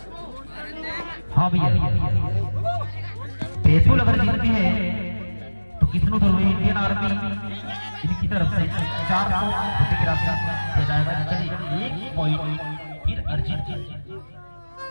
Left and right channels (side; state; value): both; inverted; correlation -1.00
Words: हाँ भैया बैतूल अगर जीतती है तो किसनो ध्रुवी इंडियन आर्मी इनकी तरफ से 400 रुपए की राशि दिया जाएगा। चलिए 1 पॉइंट फिर अर्जित